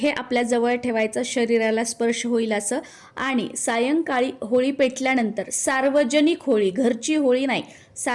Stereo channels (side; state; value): both; identical; correlation 1.00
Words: आपल्या जवळ ठेवायचं, शरीराला स्पर्श होईल असं। आणि सायंकाळी होळी पेटल्यानंतर सार्वजनिक होळी, घरची होळी नाही,